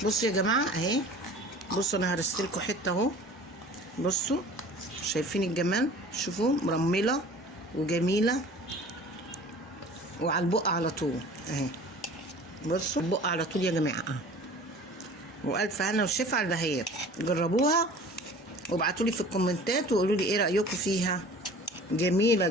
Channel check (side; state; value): both; normal; correlation 0.44